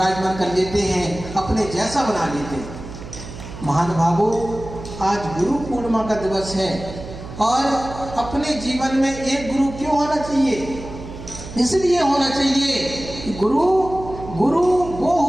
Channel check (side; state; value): right; noise; hum, 12 dB below the sound